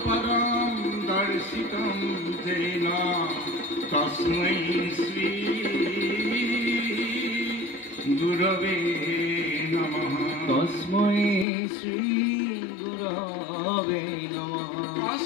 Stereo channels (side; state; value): right; drops out; at 11.5 s